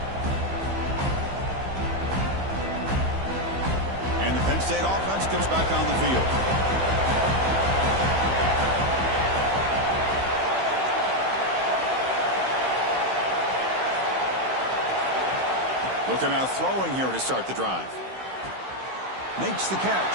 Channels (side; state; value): left; late; 15 ms